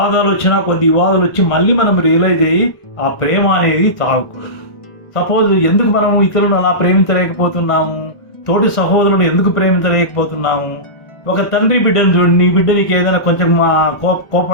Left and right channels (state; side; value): late; right; 1.6 ms